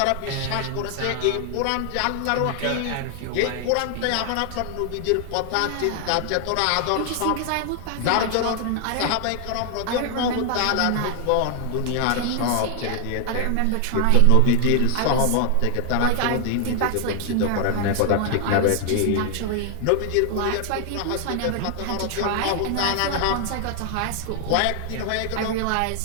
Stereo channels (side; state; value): both; different; correlation 0.00